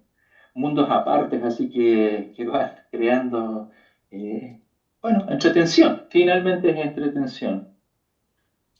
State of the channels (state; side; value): identical; both; correlation 1.00